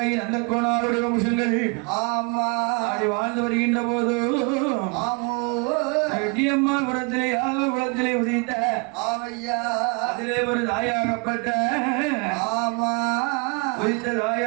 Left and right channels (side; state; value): left; quieter; 32.4 dB